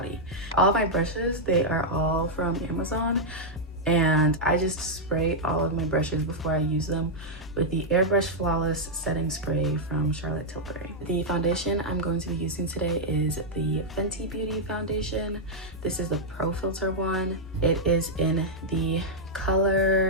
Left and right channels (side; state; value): both; normal; correlation -0.04